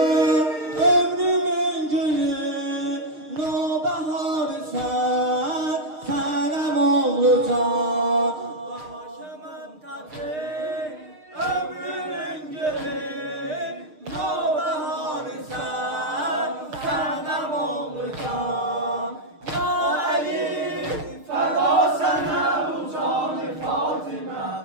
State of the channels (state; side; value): late; left; 6.5 ms